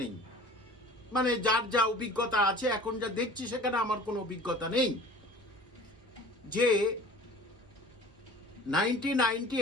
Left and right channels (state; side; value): normal; both; correlation 0.44